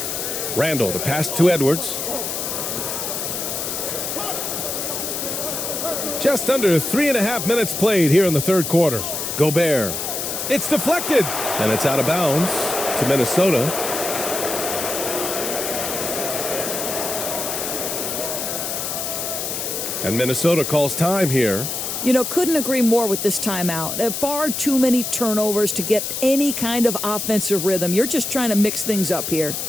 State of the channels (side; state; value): left; noise; hiss, 3 dB below the sound